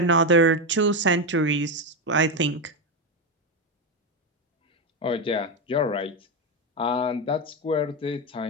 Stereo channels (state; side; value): normal; both; correlation 0.11